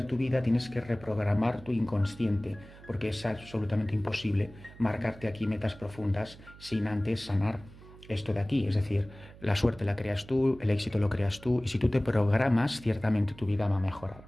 tu vida tienes que reprogramar tu inconsciente, porque es absolutamente imposible marcarte aquí metas profundas sin antes sanar esto de aquí. Es decir, la suerte la creas tú, el éxito lo creas tú, y si tú te programas, ciertamente tu vida va a mejorar.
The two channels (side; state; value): right; noise; hum, 20 dB below the sound